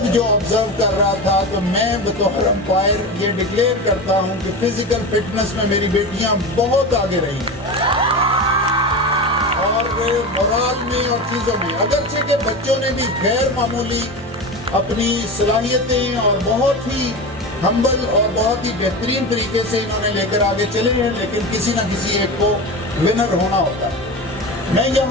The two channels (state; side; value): normal; both; correlation 0.25